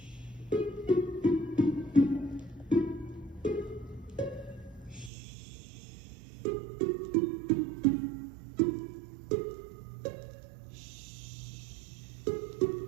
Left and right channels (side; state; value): left; drops out; at 5.1 s